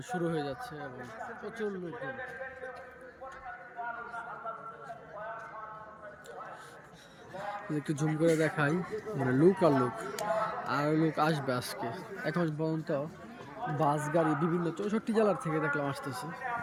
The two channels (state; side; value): identical; both; correlation 1.00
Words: শুরু হয়ে যাচ্ছে এবং প্রচুর লোকজন। একটু জুম করে দেখাই, মানে লুক আর লুক, আর লোক আসবে আজকে। এখন পর্যন্ত বাস গাড়ি বিভিন্ন 64 জেলার থেকে দেখলাম আসতেছে।